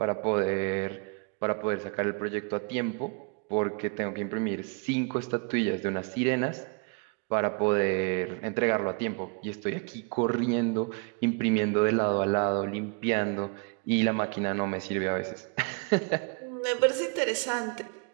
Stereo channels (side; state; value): left; quieter; 33.9 dB